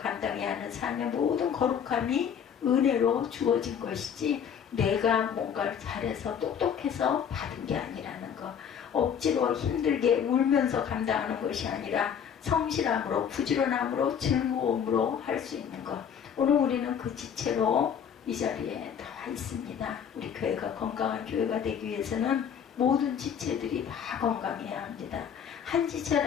하는 삶의 모든 거룩함이 은혜로 주어진 것이지 내가 뭔가를 잘해서 똑똑해서 받은 게 아니라는 거. 억지로 힘들게 울면서 감당하는 것이 아니라 성실함으로 부지런함으로 즐거움으로 할 수 있는 것. 오늘 우리는 그 지체로 이 자리에 나와 있습니다. 우리 교회가 건강한 교회가 되기 위해서는 모든 지체들이 다 건강해야 합니다. 한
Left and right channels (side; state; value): right; quieter; 7.9 dB